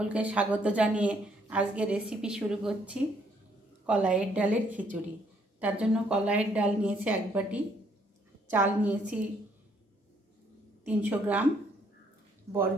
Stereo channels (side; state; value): both; normal; correlation 0.68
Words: स्वागत जानिए आज के रेसिपि शुरू करছি कलाइर डालेर खिचुड़ी। तार जन्य कलाइर डाल निয়েছি एक बाटी, चाल निয়েছি 300 ग्राम,